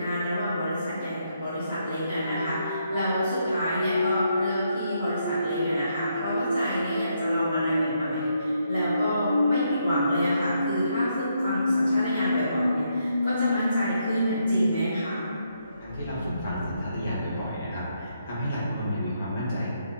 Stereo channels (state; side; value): inverted; both; correlation -0.77